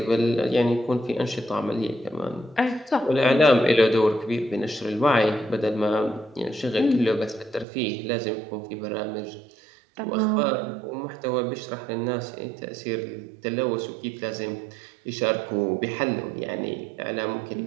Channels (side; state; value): left; drops out; at 7.7 s